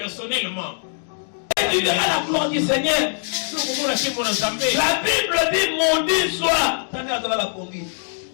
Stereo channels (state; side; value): silent; right; digital silence